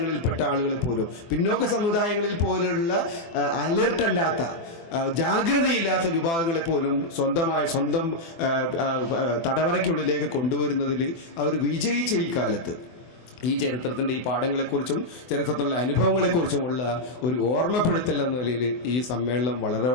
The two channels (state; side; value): late; right; 24 ms